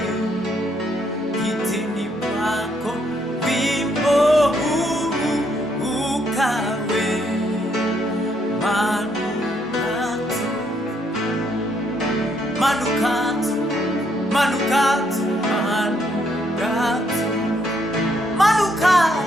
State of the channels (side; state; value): both; normal; correlation 0.72